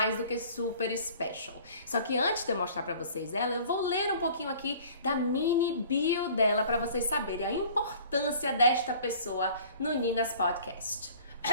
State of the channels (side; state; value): both; inverted; correlation -0.49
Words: do que super special. Só que antes de eu mostrar para vocês ela, eu vou ler um pouquinho aqui da mini bio dela para vocês saberem a importância desta pessoa no Nina's podcast.